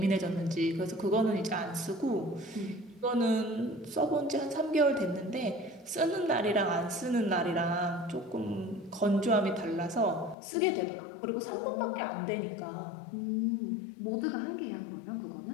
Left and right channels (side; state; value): right; drops out; at 10.4 s